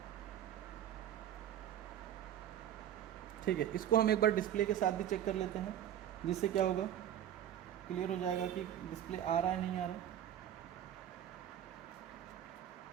ठीक है, इसको हम एक बार डिस्प्ले के साथ भी चेक कर लेते हैं, जिससे क्या होगा, क्लियर हो जाएगा कि डिस्प्ले आ रहा है नहीं आ रहा है।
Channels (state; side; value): quieter; left; 10.7 dB